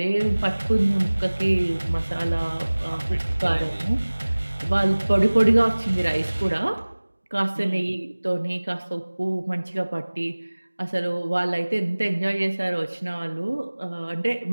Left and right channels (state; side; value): inverted; both; correlation -1.00